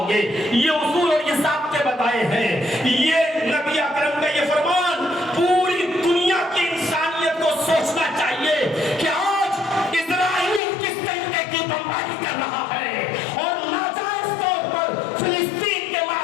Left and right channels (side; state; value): right; drops out; at 10.6 s